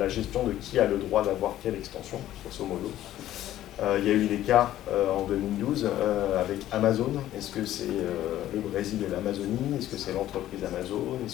gestion de qui a le droit d'avoir quelle extension, grosso modo. Il y a eu des cas en 2012 avec Amazon. Est-ce que c'est le Brésil et l'Amazonie? Est-ce que c'est l'entreprise Amazon?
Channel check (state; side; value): quieter; right; 13.2 dB